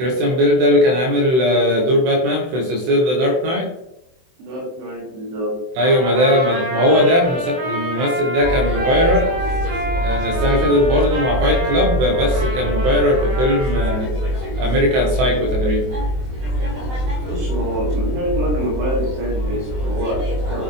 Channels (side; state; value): left; late; 23 ms